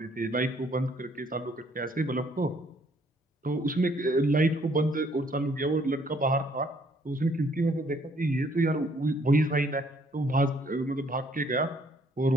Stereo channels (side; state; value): both; normal; correlation 0.65